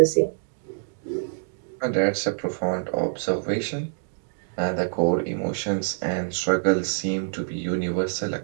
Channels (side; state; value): left; silent; digital silence